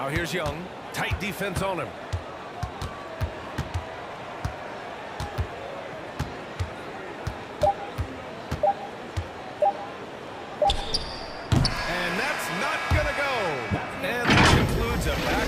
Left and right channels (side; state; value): both; identical; correlation 1.00